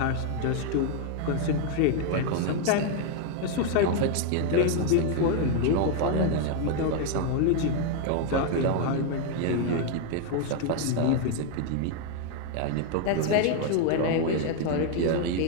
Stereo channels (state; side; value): different; both; correlation 0.01